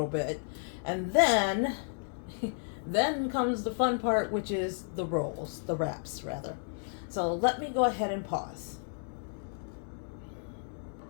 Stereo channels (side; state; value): right; silent; digital silence